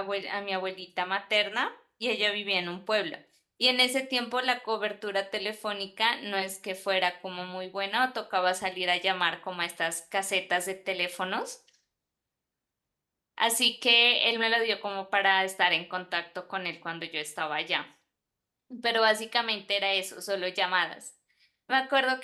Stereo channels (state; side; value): identical; both; correlation 1.00